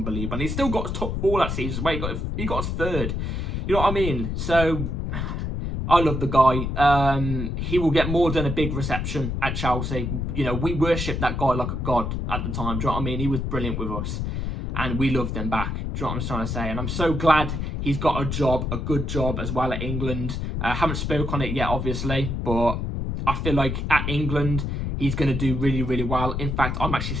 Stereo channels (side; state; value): left; noise; rumble, 2 dB below the sound